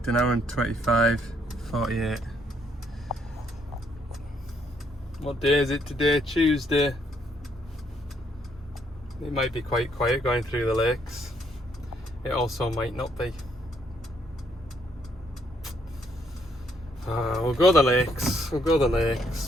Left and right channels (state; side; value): normal; both; correlation 0.71